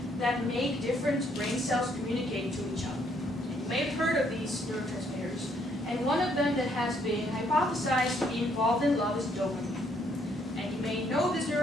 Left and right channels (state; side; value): normal; both; correlation 0.69